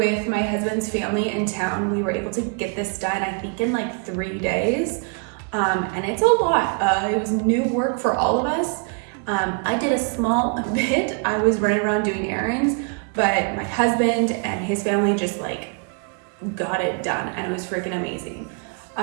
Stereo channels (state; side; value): quieter; left; 38.4 dB